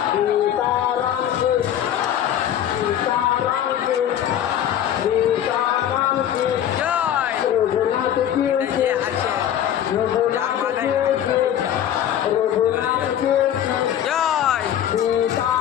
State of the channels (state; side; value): quieter; right; 10.5 dB